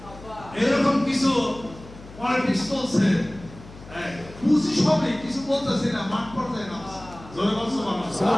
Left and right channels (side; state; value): left; noise; hum, 18 dB below the sound